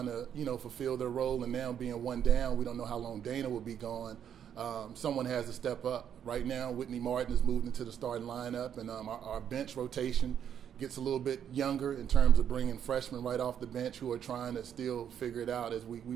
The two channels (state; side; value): quieter; left; 9.0 dB